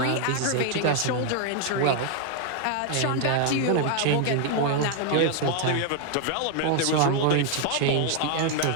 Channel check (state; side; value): different; both; correlation 0.00